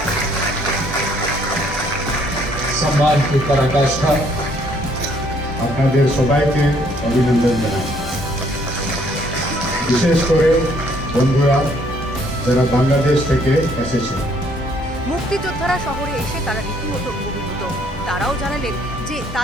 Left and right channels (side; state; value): both; normal; correlation 0.65